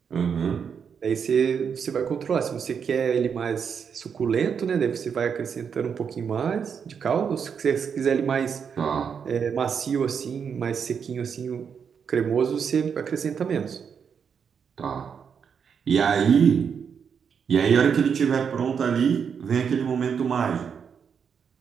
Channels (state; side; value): quieter; left; 6.9 dB